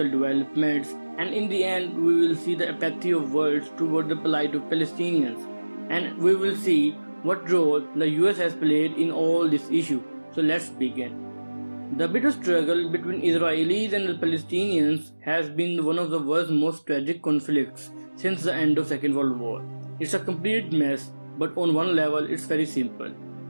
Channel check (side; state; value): both; inverted; correlation -1.00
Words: developments, and in the end we will see the apathy of world toward the plight of Palestinians, and we will see what role the US has played in all this issue. So let's begin. The bitter struggle between Israelis and the Palestinians has been one of the world's most tragic conflicts since the end of Second World War. It's a complete mess, but on one level it's very simple.